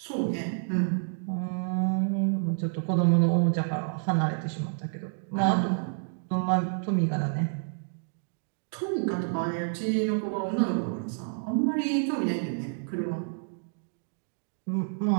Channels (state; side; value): silent; left; digital silence